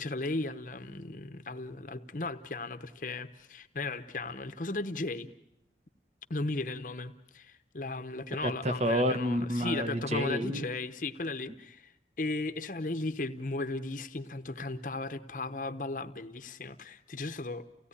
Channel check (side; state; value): both; normal; correlation 0.44